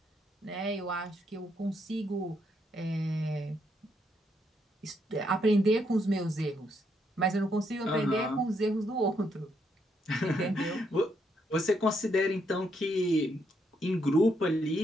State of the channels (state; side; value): normal; both; correlation 0.76